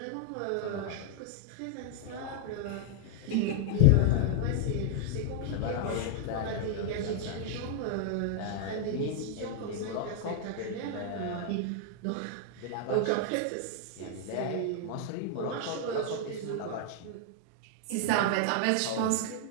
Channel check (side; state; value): both; different; correlation -0.01